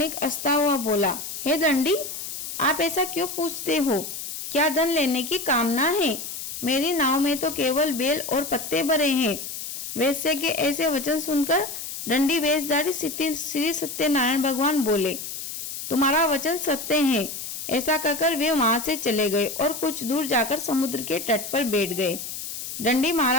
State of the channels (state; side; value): noise; left; hiss, 7 dB below the sound